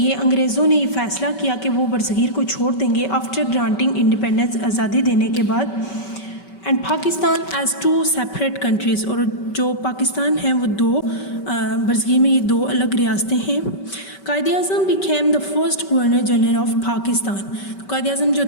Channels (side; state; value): right; late; 5.2 ms